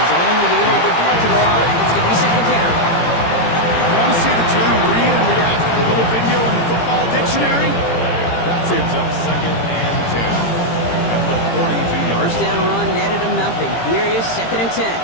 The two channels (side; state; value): right; late; 18 ms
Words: only able to get back to the line. It's going to be 2nd down. You want to see the term read and react to the little video in the football dictionary? That's it. Up 2nd and 10 at the 42-yard 1st down run netted him nothing. Here is 2nd and 10.